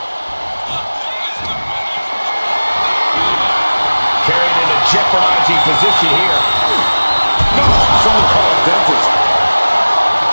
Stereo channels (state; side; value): inverted; both; correlation -1.00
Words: Carried into jeopardizing position here. So-called dentist.